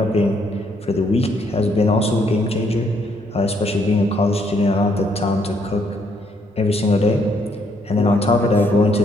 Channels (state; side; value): normal; both; correlation 0.71